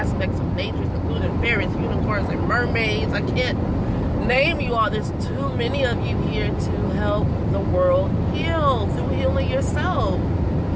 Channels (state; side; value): identical; both; correlation 1.00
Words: of nature, including fairies, unicorns, and mermaids. I can't name you all. There's too many of you here to help the world heal through healing yourself.